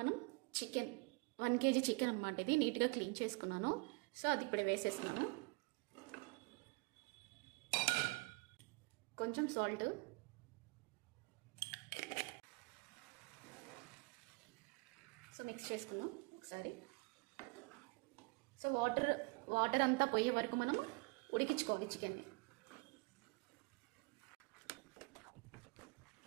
చికెన్ 1 kg చికెన్ అన్నమాట. ఇది నీట్గా క్లీన్ చేసుకున్నాను. సో అది ఇప్పుడు వేసేస్తున్నాను. కొంచెం సాల్ట్, సో మిక్స్ చేసుకుందాం ఒకసారి. సో వాటర్ అంతా పోయే వరకు మనం ఉడికించుకోవాలి చికెన్ని.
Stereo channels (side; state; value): left; quieter; 28.6 dB